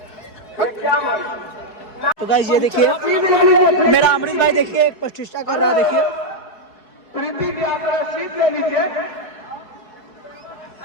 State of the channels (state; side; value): late; right; 4.7 ms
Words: तो गाइस ये देखिए मेरा अमृत भाई देखिए एक प्रतिष्ठा कर रहा है, देखिए